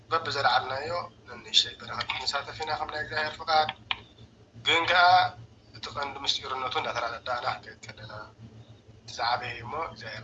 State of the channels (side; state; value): both; identical; correlation 1.00